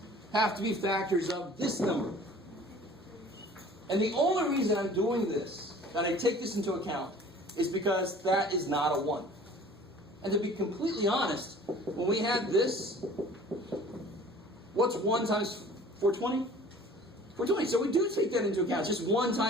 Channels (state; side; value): normal; both; correlation 0.47